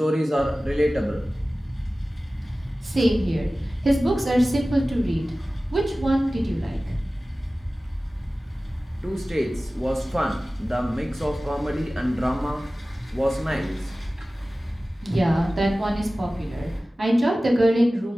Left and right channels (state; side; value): normal; both; correlation 0.97